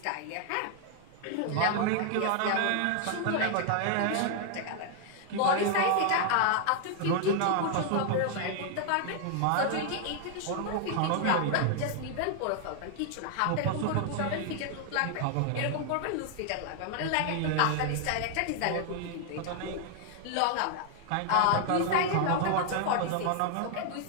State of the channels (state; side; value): different; both; correlation 0.00